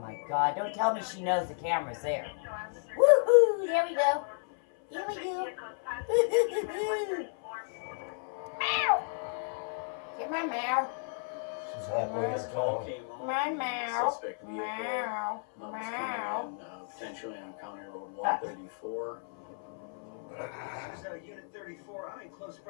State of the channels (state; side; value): silent; right; 56 dB below the other